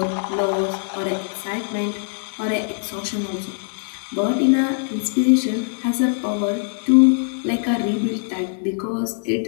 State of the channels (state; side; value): silent; right; 62 dB below the other